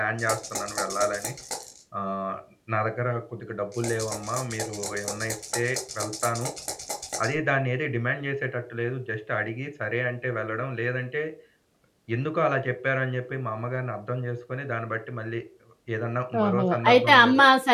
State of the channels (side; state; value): both; identical; correlation 1.00